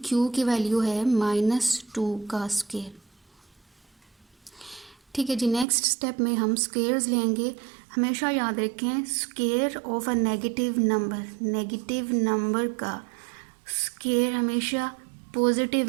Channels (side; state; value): left; drops out; at 5.7 s